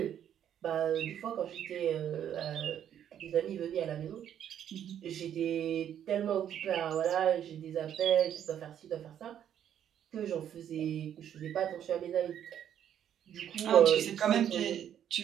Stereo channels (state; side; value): quieter; left; 9.9 dB